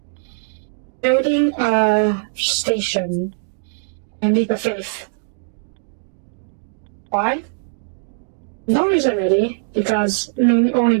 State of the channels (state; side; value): silent; left; digital silence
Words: building a station in Leap of Faith. Why? No reason really, only